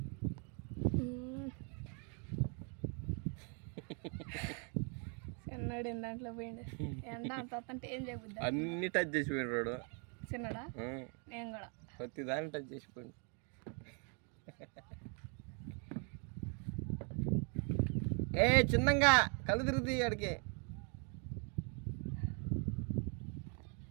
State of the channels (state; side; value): quieter; left; 38.2 dB